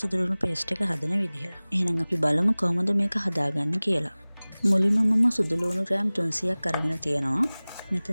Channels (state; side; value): inverted; both; correlation -0.99